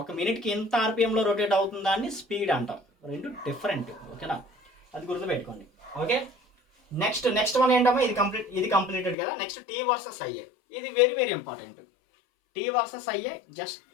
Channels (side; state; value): right; drops out; at 9.2 s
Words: ఒక మినిట్కి ఎంత ఆర్పిఎంలో రొటేట్ అవుతుందా అని స్పీడ్ అంటాం. రెండు డిఫరెంట్. ఓకేనా? అది గుర్తుపెట్టుకోండి. ఓకే, నెక్స్ట్ వన్ ఏంటమ్మా, ఇది కంప్లీటెడ్ కదా. Next T versus IA. ఇది very important. T versus IA just